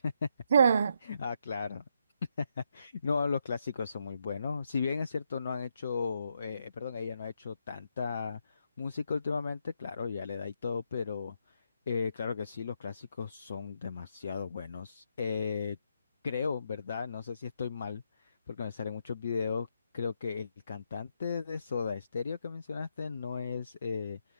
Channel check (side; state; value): both; inverted; correlation -0.79